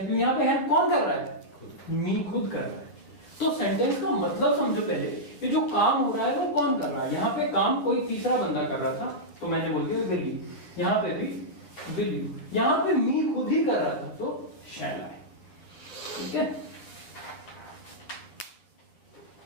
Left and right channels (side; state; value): right; late; 10 ms